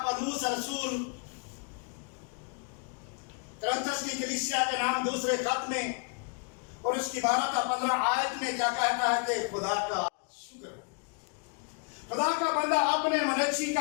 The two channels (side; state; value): right; quieter; 36.7 dB